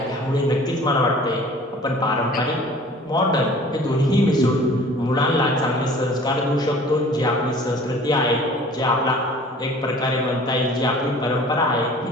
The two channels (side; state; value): both; normal; correlation 0.48